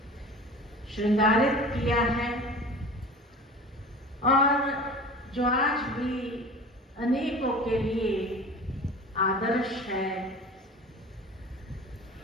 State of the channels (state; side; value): normal; both; correlation 0.38